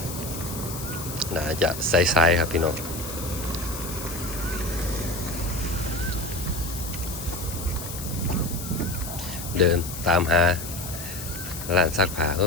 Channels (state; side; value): noise; left; hiss, 9 dB below the sound